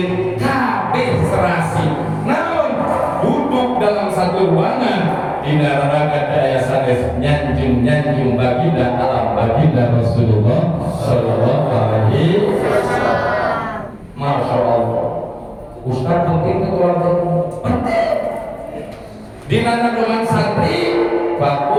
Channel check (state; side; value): identical; both; correlation 1.00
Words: kabeh serasi. Duduk dalam satu ruangan di neraka daya sanes nyanjung baginda alam baginda Rasulullah Sallallahu Alaihi Wasallam. Masya Allah, Ustaz penting keluarga penting. Di mana dengan santri